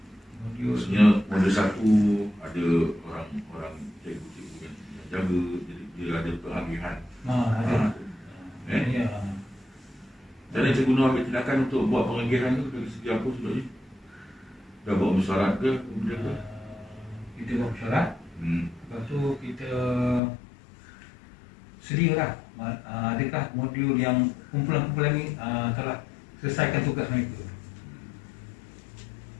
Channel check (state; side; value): drops out; right; at 20.2 s